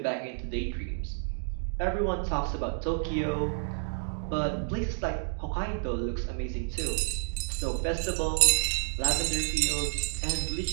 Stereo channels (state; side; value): silent; left; digital silence